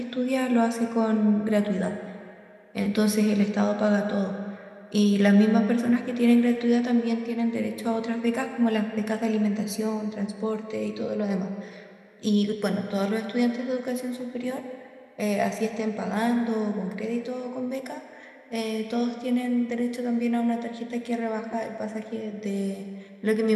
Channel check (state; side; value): identical; both; correlation 1.00